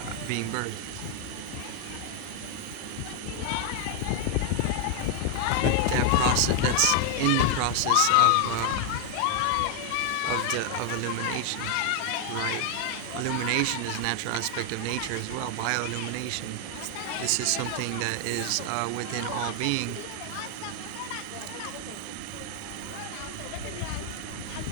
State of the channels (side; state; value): both; different; correlation 0.00